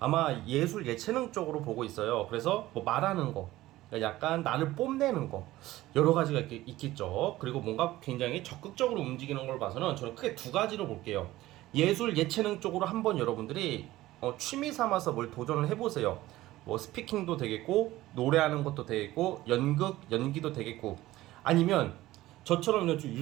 아마 예술 예체능 쪽으로 보고 있어요. 그래서 뭐 말하는 거, 그러니까 약간 나를 뽐내는 거, 여러 가지가 있겠죠. 그리고 뭔가 굉장히 적극적으로 움직이는 걸 봐서는 저는 크게 두 가지로 볼게요. 예술 예체능 쪽으로 한번 여러분들이 취미 삼아서 뭘 도전을 해보세요. 뭐 스피킹도 되겠고, 노래하는 것도 되겠고, 연극 연기도 되겠고, 아니면 저처럼 요즘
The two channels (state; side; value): quieter; left; 16.5 dB